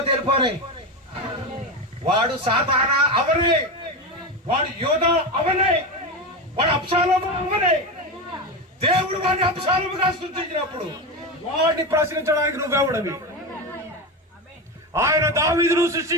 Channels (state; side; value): normal; both; correlation 0.18